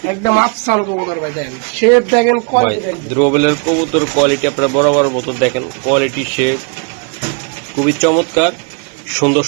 একদম আফসান কবুতর ভাই, দেখেন শেপ দেখেন, কোয়ালিটি দেখেন। দ্রোবেলের কবুতর কোয়ালিটি আপনারা বরাবর মতো দেখেন, কোয়ালিটি শেপ খুবই চমৎকার, সুন্দর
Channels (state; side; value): quieter; left; 38.7 dB